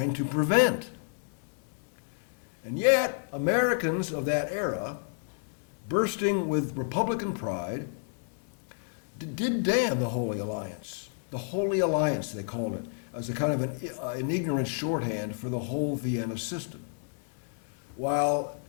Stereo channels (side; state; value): right; silent; digital silence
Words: to prevent. And yet, Americans of that era, bursting with Republican pride, did damn the Holy Alliance. The Holy Alliance, they called it, as a kind of an ignorant shorthand for the whole Vienna system. While